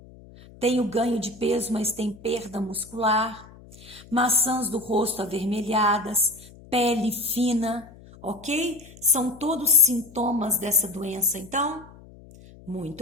tem o ganho de peso, mas tem perda muscular, maçãs do rosto avermelhadas, pele fina, ok? São todos sintomas dessa doença, então?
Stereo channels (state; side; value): noise; left; hum, 21 dB below the sound